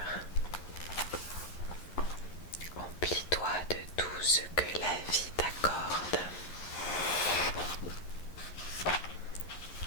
Emplis-toi de tout ce que la vie t'accorde.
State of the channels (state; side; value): late; right; 11 ms